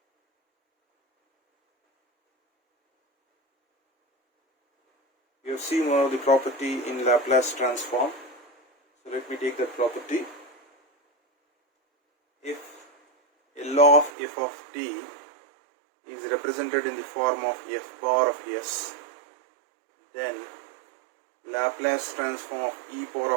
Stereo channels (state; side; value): drops out; left; at 14.1 s